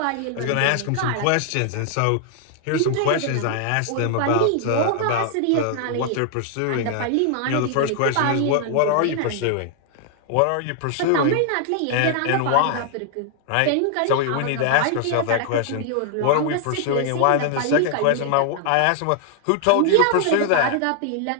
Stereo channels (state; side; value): different; both; correlation 0.00